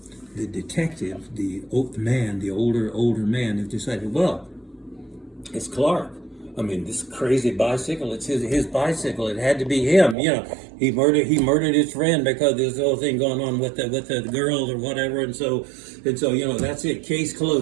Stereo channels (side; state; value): left; drops out; at 10.2 s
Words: the detective, the older man, has decided, well, it's Clark. I mean, this crazy bicycle, it's his bicycle. It had to be him. He murdered his friend because there's the whole thing going on with the girl or whatever, and so that's it. Case